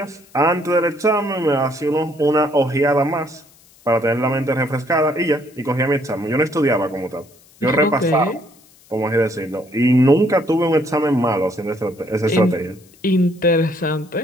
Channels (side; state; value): left; noise; hiss, 28 dB below the sound